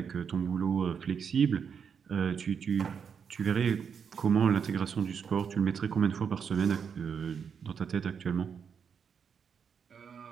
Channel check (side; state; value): left; quieter; 6.8 dB